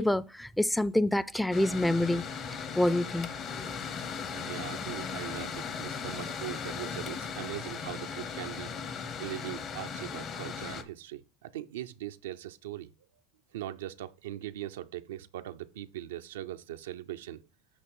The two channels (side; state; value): both; normal; correlation 0.74